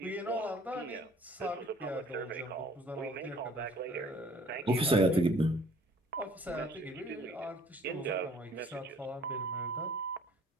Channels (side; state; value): both; normal; correlation 0.54